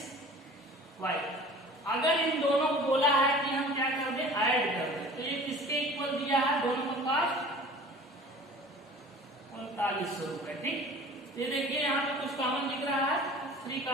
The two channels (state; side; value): normal; both; correlation 0.44